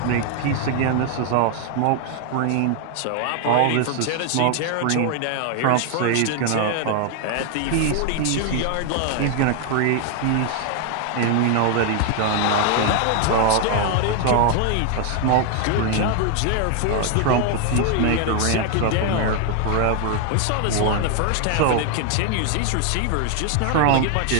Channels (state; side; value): different; both; correlation 0.00